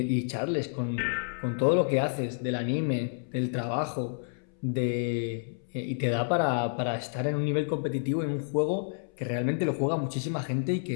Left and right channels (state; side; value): silent; right; 58 dB below the other